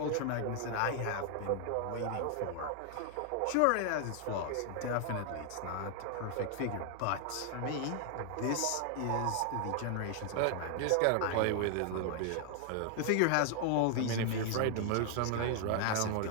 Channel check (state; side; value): different; both; correlation 0.00